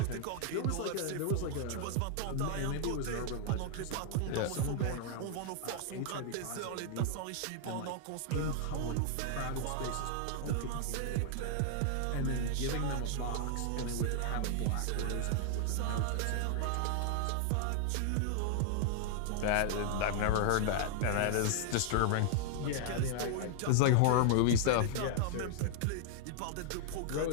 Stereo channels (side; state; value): both; different; correlation 0.00